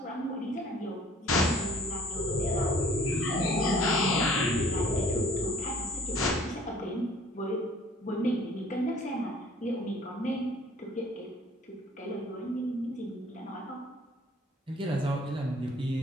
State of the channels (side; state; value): both; normal; correlation 0.54